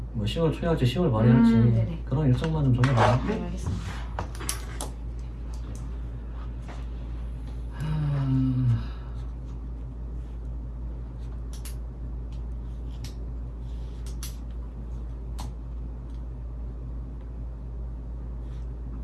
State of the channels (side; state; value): both; identical; correlation 1.00